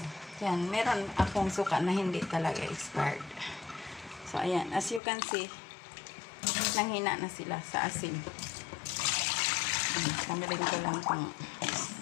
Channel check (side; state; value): right; drops out; at 5.0 s